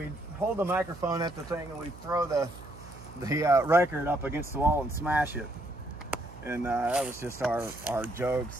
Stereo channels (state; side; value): noise; right; hum, 17 dB below the sound